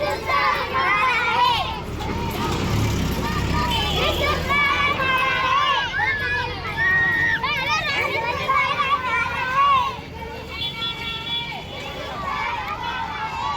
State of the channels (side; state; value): both; identical; correlation 1.00